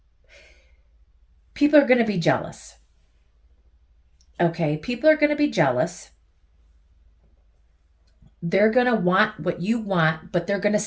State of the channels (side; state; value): both; identical; correlation 1.00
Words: people are going to be jealous. Okay, people are going to be jealous. They're going to want what you want, but they're going to